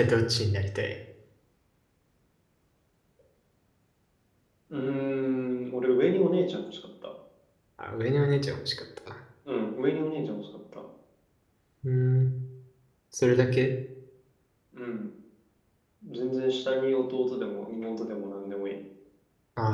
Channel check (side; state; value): both; identical; correlation 1.00